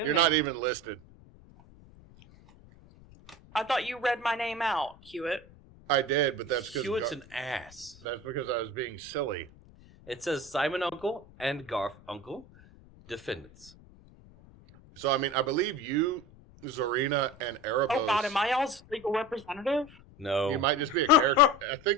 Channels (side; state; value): left; noise; rumble, 23 dB below the sound